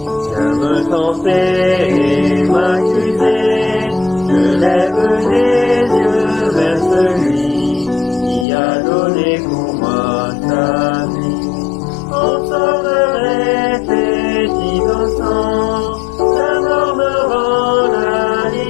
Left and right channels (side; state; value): right; drops out; at 8.5 s